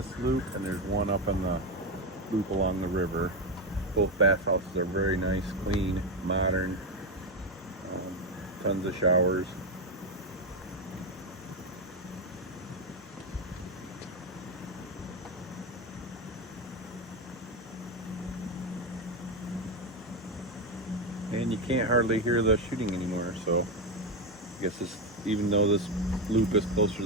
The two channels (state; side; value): normal; both; correlation 0.11